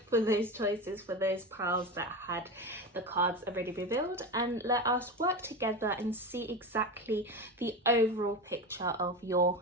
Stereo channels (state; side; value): normal; both; correlation 0.23